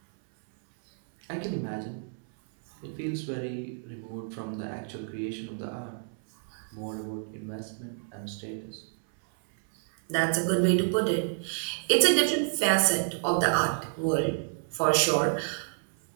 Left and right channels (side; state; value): left; silent; 58 dB below the other